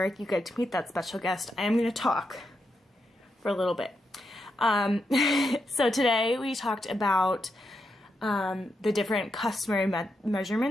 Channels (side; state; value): both; normal; correlation 0.84